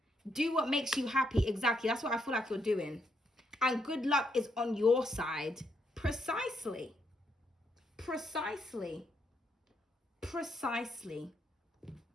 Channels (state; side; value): normal; both; correlation 0.77